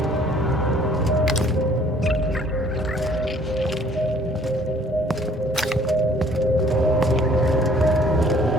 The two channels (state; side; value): normal; both; correlation 0.57